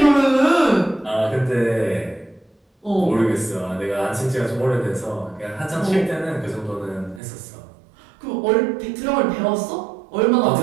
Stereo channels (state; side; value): drops out; left; at 7.2 s